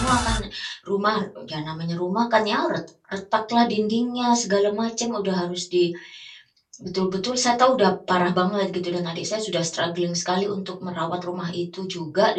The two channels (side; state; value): both; identical; correlation 1.00